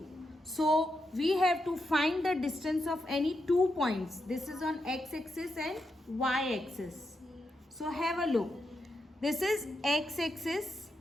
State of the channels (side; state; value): both; normal; correlation 0.85